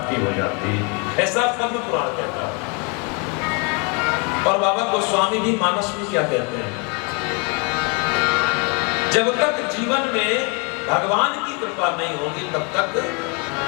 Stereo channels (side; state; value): right; quieter; 33.1 dB